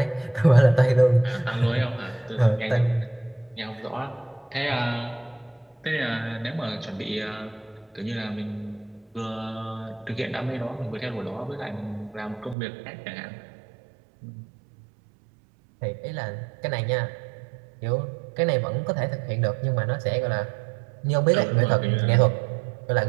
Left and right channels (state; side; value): drops out; left; at 12.6 s